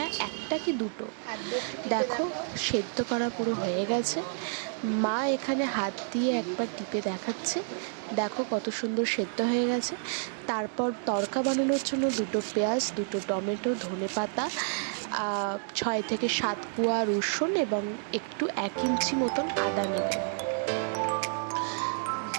1টা কি 2টো। দেখো সেদ্ধ করা পুরো হয়ে গেছে। মা এখানে হাত দিয়ে একবার টিপে দেখাচ্ছে, দেখো কত সুন্দর সেদ্ধ হয়ে গেছে। তারপর তড়কা বানানোর জন্য 2টো পেঁয়াজ, 2টো টমেটো, ধনেপাতা, 6 থেকে 7 কোয়া রসুন এবং একটু 1 ইঞ্চি মতন আদা নেবে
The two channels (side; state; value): left; silent; digital silence